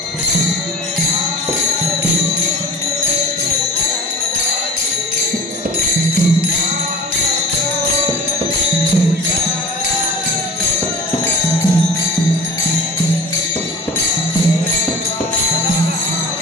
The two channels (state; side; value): normal; both; correlation 0.39